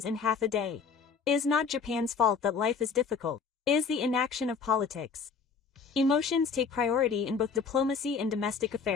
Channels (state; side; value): quieter; right; 5.6 dB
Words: in half a day. It is not Japan's fault that life is difficult. It is the inaction of politics. Emotions take priority in both diplomacy and domestic